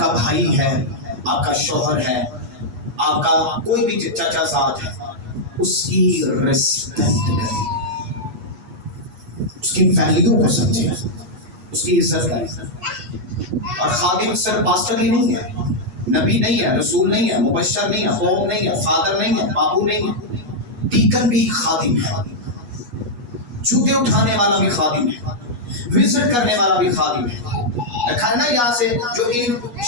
भाई है, आपका शौहर है, आपका कोई भी चाचा साथ है, उसकी रिस्पेक्ट करें, उसकी वैल्यू को समझे, उसकी इज्जत करें। और खादिम सिर्फ पास्टर ही नहीं है, नबी नहीं है, रसूल नहीं है, मुबश्शिर नहीं है, कौम नहीं है, फादर नहीं है, बाबू नहीं है, डीकन भी खादिम है, जूते उठाने वाला भी खादिम है, विजिट करने वाला भी खादिम है। देखा है ना यहाँ से, जो इन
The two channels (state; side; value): late; left; 8.3 ms